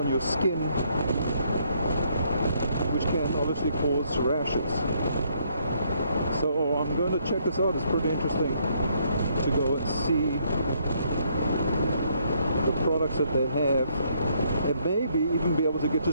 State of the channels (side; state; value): both; inverted; correlation -0.70